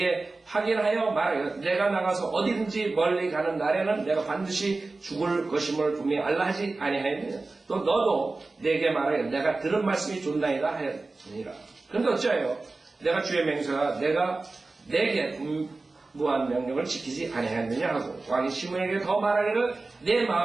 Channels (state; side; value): quieter; left; 3.5 dB